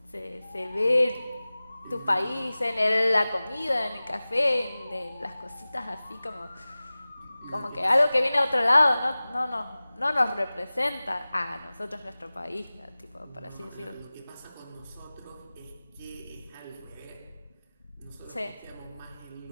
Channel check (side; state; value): both; inverted; correlation -0.98